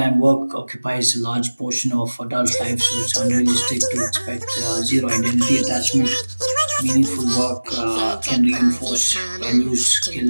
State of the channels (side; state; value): both; inverted; correlation -1.00